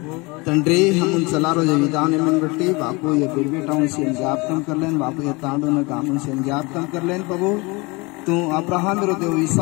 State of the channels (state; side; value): quieter; right; 26.0 dB